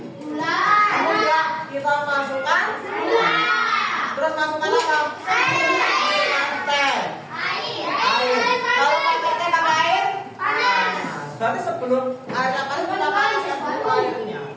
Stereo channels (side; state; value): both; identical; correlation 1.00